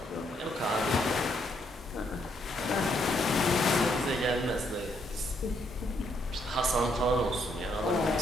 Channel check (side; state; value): both; normal; correlation 0.73